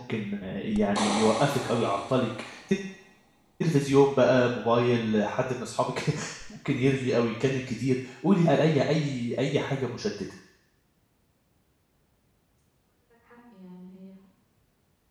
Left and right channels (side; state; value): both; identical; correlation 1.00